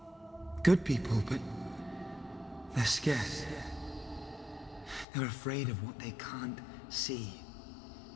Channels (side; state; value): right; drops out; at 5.1 s